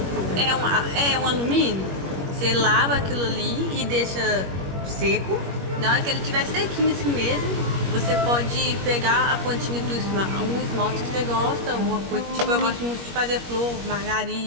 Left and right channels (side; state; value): left; late; 21 ms